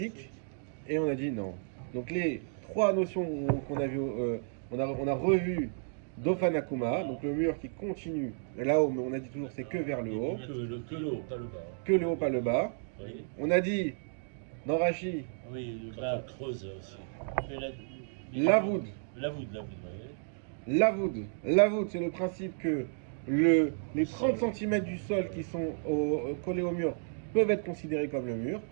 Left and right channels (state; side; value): silent; left; digital silence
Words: Et on a dit non. Donc les 3 notions qu'on a vues, on a revu Dofanakuma, donc le mur qui continue là-haut, mais on a dit toujours c'est que vers le haut. Que le haut, pas le bas. Que le haut, pas le bas. Vous voyez. On a dit, dans Rashi, Oui, le Quand bas. on creuse aussi. fait la- Lavoud. Lavoud, vous voyez. Lavoud, c'est le principe que les 30 cm du sol qui sont collés au mur peuvent être considérés comme le mur,